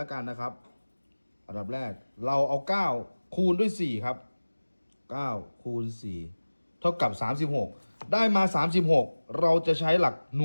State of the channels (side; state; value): both; inverted; correlation -1.00